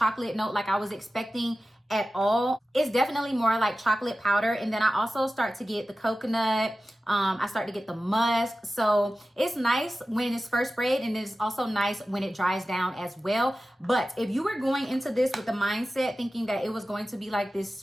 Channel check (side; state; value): both; normal; correlation 0.95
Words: note like I was expecting at all. It's definitely more like chocolate powder. And then I also start to get the coconut. I start to get the musk. So it's nice when it's first sprayed, and it's also nice when it dries down as well. But if you were going into this with the mindset thinking that it was going to be like this